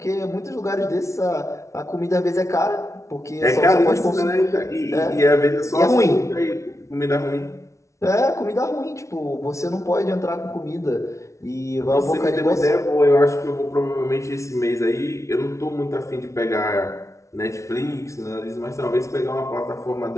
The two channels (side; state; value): right; late; 0.14 ms